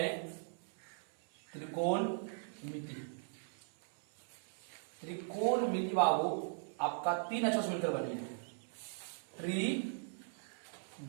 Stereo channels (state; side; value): silent; left; 52 dB below the other